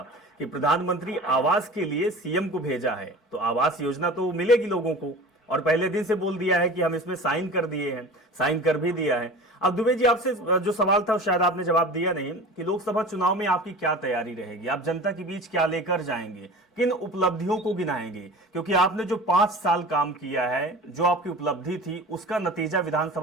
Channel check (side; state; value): both; normal; correlation 0.37